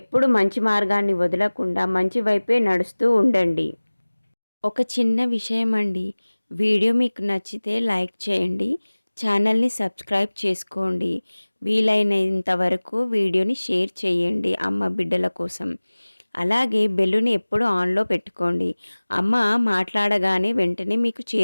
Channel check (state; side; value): inverted; both; correlation -1.00